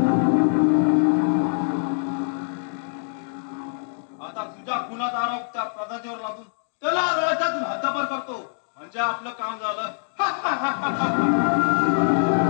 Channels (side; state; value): right; silent; digital silence